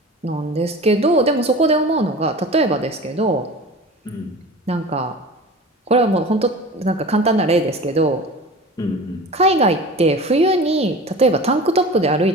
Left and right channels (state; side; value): normal; both; correlation 0.36